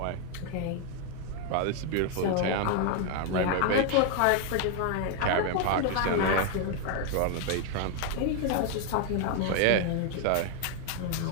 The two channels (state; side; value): different; both; correlation 0.00